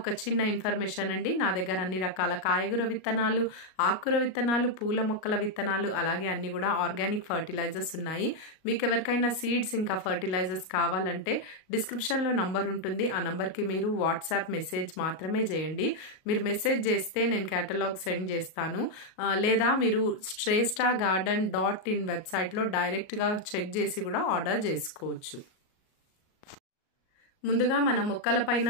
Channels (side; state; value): right; late; 38 ms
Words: చిన్న ఇన్ఫర్మేషన్ అండి. నా దగ్గర అన్ని రకాల కాయగూర విత్తనాలు, ఆకుకూర విత్తనాలు, పూల మొక్కల విత్తనాలు, అలాగే అన్ని కూడా ఆర్గానిక్ ఫర్టిలైజర్స్ ఉన్నాయి. మీకు ఎవరికైనా సీడ్స్ ఇంకా ఫర్టిలైజర్స్ కావాలంటే డిస్క్రిప్షన్లో నంబర్ ఉంటుంది. ఆ నంబర్కి మీరు వాట్సాప్ మెసేజ్ మాత్రమే చేయండి. మీరు మెసేజ్ చేస్తే నేను కేటలాగ్ సెండ్ చేస్తాను. లేదా మీరు shresthagarden.in వెబ్సైట్లో డైరెక్ట్గా చెక్ చేసి కూడా ఆర్డర్ చేసుకోవచ్చు. ముందుగా మన మొక్కల పైన